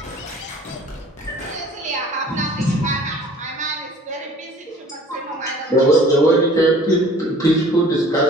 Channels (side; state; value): both; normal; correlation 0.49